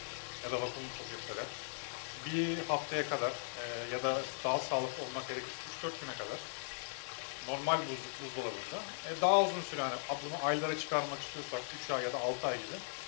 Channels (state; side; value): silent; right; 52 dB below the other